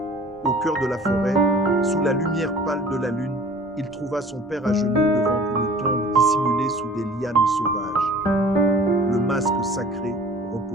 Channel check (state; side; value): normal; both; correlation 0.46